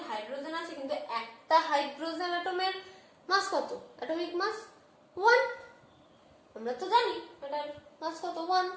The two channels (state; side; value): identical; both; correlation 1.00